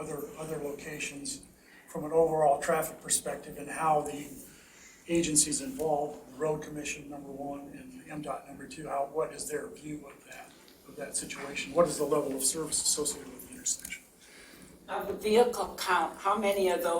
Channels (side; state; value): both; identical; correlation 1.00